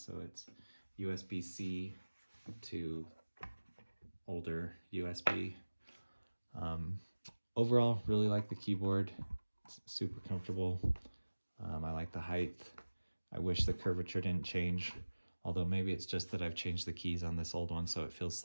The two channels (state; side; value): inverted; both; correlation -1.00